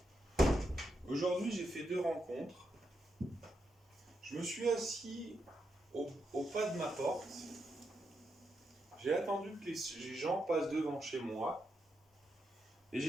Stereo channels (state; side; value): normal; both; correlation 0.83